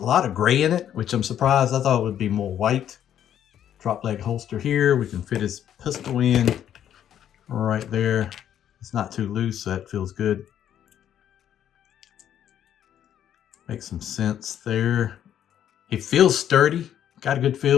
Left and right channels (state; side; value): quieter; right; 10.2 dB